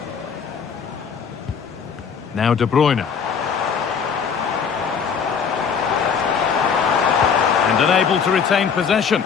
Now De Bruyne. And unable to retain possession.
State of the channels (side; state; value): right; quieter; 6.6 dB